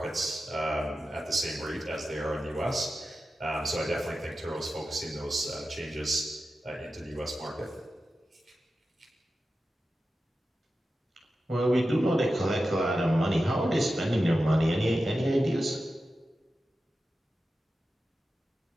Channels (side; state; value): both; normal; correlation 0.92